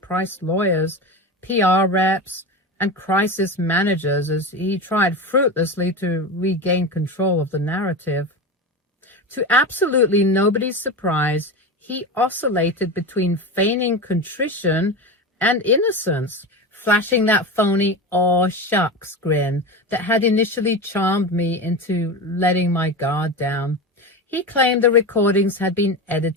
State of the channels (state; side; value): normal; both; correlation 0.23